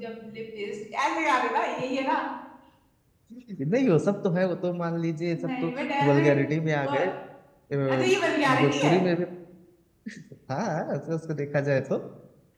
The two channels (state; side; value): identical; both; correlation 1.00